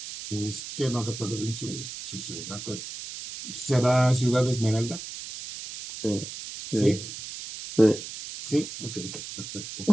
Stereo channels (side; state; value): right; noise; hiss, 9 dB below the sound